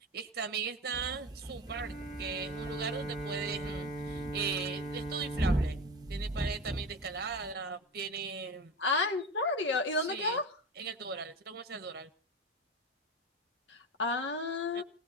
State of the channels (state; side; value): normal; both; correlation 0.25